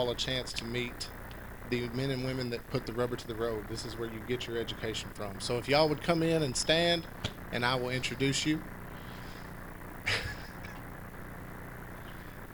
a chance to meet the men and women that put the rubber to the road. This is where you get your education from. So if y'all would come in and stand, and I will introduce you.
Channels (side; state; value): both; identical; correlation 1.00